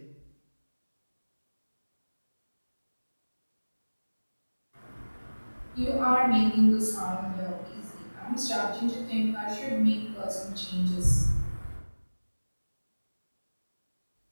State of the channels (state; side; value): inverted; both; correlation -1.00